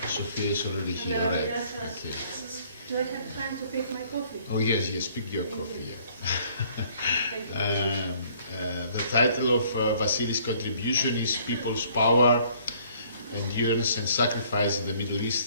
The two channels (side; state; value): both; inverted; correlation -0.60